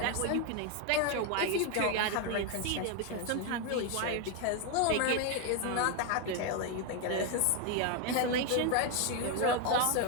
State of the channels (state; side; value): different; both; correlation 0.01